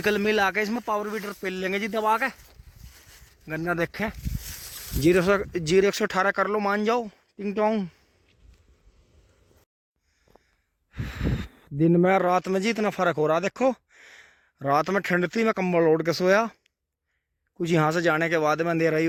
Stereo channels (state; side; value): identical; both; correlation 1.00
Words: मिल आके इसमें पावर वीटर पेल लेंगे जी दबा के। गन्ना देखें 0-118 कर लो, मान जाओ टिंग टोंग। दिन में रात में जी इतना फर्क हो रहा, देखो रात में ठंड थी, मैं कंबल ओढ़ के सोया। कुछ यहाँ से जाने के बाद में अंधेरा ही